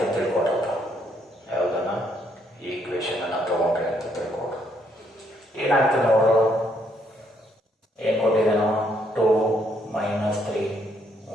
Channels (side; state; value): both; normal; correlation 0.72